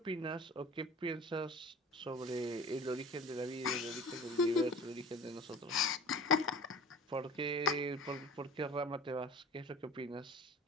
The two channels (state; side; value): normal; both; correlation 0.41